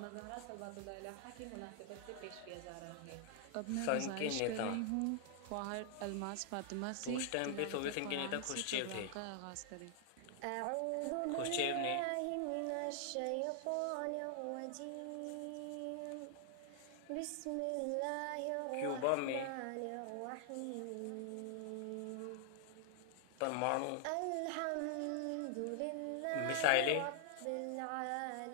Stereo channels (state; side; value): different; both; correlation 0.00